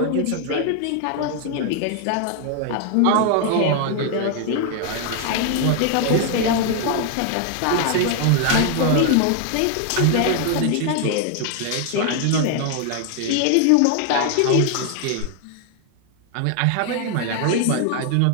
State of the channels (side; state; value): both; different; correlation 0.00